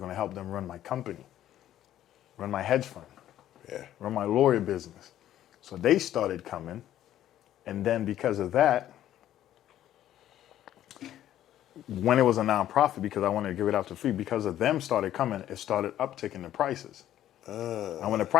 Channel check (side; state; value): right; quieter; 12.2 dB